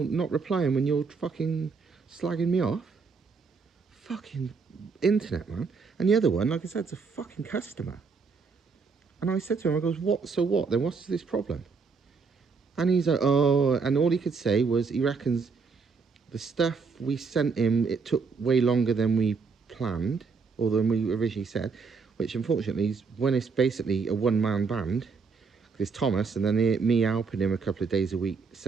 not replying when you're fucking slagging me off? Fucking internet, man. And the other one, like I said, it's a fucking customer. And I said to him, I goes, what, so what? Then what's this problem? And he's like, oh, and all he could say was he reckons the stuff we sent him, it took way longer than we planned, or than we originally said, which unfortunately is when it's basically a one-man band. There's Thomas, and then me helping him a couple of days a week,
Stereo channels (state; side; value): quieter; left; 5.0 dB